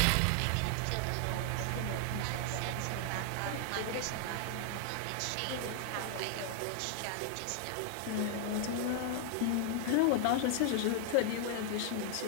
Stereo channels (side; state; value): both; different; correlation 0.00